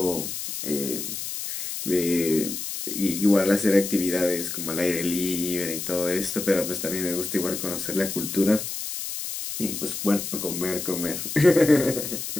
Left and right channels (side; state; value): left; noise; hiss, 6 dB below the sound